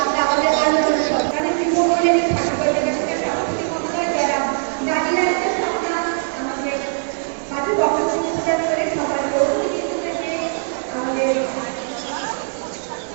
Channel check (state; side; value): silent; left; digital silence